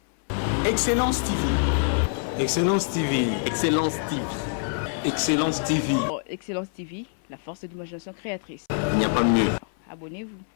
Excellence TV. Excellence TV. Excellence TV. Excellence TV. Excellence TV, la force de l'imagination créatrice. Il n'y a pas mieux. Abonnez-vous.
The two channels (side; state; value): right; silent; 61 dB below the other